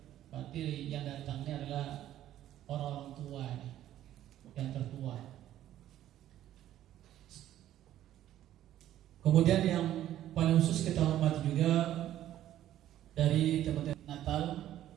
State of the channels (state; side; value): quieter; left; 12.5 dB